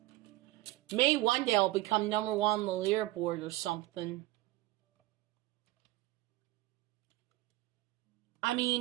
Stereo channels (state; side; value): quieter; left; 18.4 dB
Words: maybe one day I'll become number 1 on the leaderboard or something. I